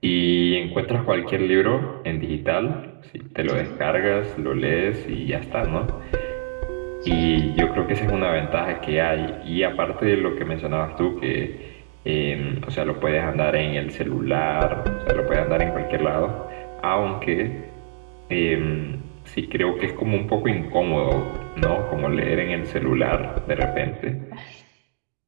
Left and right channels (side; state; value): left; silent; digital silence